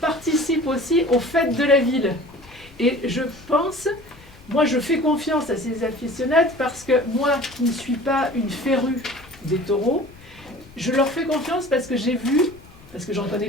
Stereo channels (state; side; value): noise; left; rumble, 23 dB below the sound